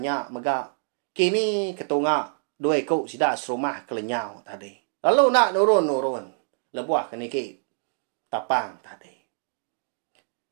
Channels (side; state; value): left; silent; digital silence